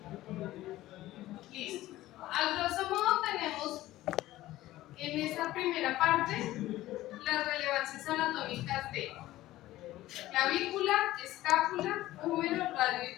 Listo. A grosso modo tenemos en esta primera parte las relevancias anatómicas de clavícula, escápula, húmero, radio y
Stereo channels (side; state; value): right; quieter; 15.9 dB